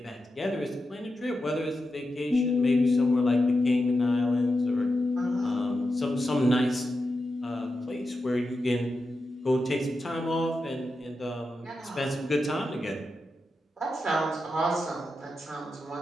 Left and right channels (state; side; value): normal; both; correlation 0.89